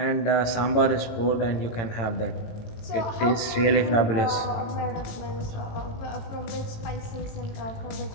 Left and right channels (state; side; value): late; right; 18 ms